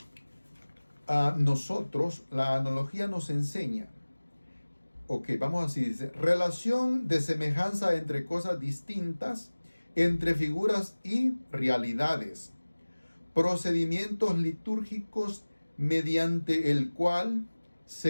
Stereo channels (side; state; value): both; inverted; correlation -1.00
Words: a nosotros, la analogía nos enseña. Ok, vamos así, dice, relación de semejanza entre cosas distintas, entre figuras y realidades, procedimientos litúrgicos mediante el cual